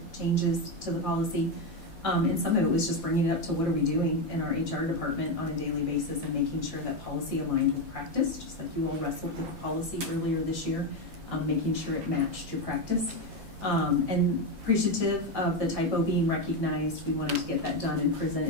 changes to the policy. And some of it was just bringing it up to what are we doing in our HR department on a daily basis and making sure that policy aligned with practice, just like you all wrestled with the policy earlier this year, making sure it matched your practice. And appreciative of the typo being recognized, we wanted to get that done and present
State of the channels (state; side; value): late; left; 5.8 ms